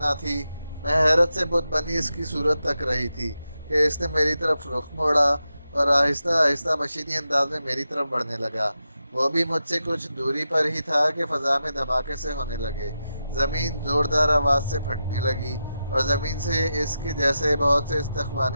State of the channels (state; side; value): inverted; both; correlation -0.89